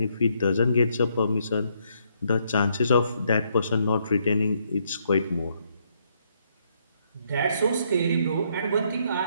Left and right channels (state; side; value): inverted; both; correlation -0.73